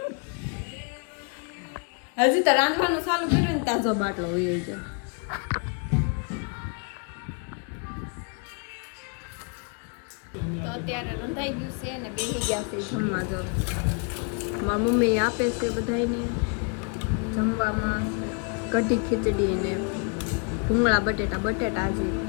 રાંધવાનું ચાલુ કર્યું ને તાજો બાટલો હોય છે. તો અત્યારે રંધાઈ ગયું છે ને બેસી ગયા છે જમવા. જો મારી મમ્મી આપે છે બધાને જમવામાં કઢી ખીચડી ને ભૂંગળા બટેટા હજી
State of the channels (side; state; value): right; quieter; 37.2 dB